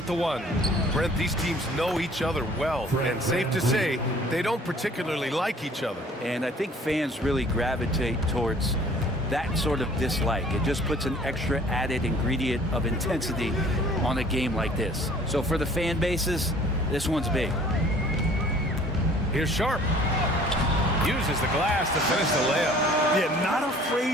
the 1. Brent, these teams know each other well. And safe to say, they don't particularly like each other. And I think fans really gravitate towards that sort of dislike. It just puts an extra added ingredient of intensity on a game like this. So for the fan bases, this one's big. Here's Sharp. Uses the glass to finish the layup. Yeah, not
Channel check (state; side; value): normal; both; correlation 0.53